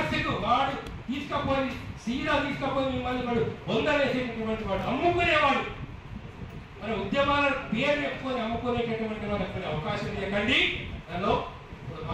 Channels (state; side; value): identical; both; correlation 1.00